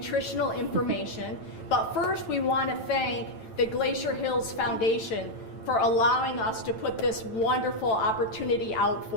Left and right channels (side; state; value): right; late; 9.0 ms